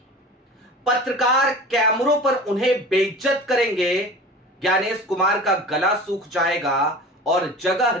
पत्रकार कैमरों पर उन्हें बेइज्जत करेंगे, ज्ञानेश कुमार का गला सूख जाएगा और जगह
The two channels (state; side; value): normal; both; correlation 0.37